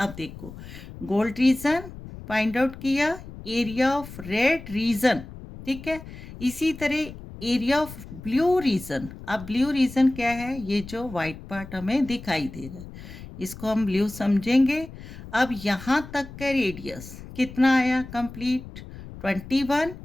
देखो गोल्ड रीजन फाइंड आउट किया, एरिया ऑफ रेड रीजन, ठीक है। इसी तरह एरिया ऑफ ब्लू रीजन। अब ब्लू रीजन क्या है, ये जो वाइट पार्ट हमें दिखाई दे रहा है इसको हम ब्लू समझेंगे। अब यहाँ तक का रेडियस कितना आया कंप्लीट 21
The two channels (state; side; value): noise; left; rumble, 14 dB below the sound